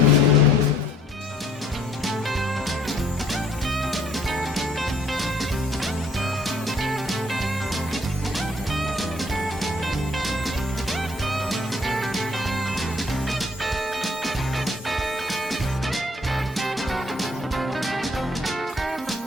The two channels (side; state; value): both; normal; correlation 0.61